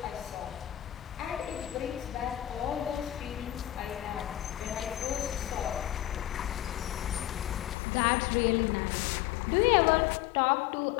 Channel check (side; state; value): right; drops out; at 7.8 s